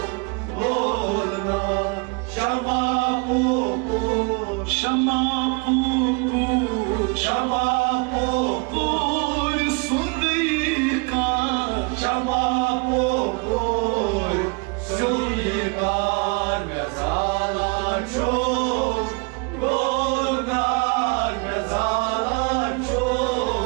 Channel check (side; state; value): left; quieter; 31.5 dB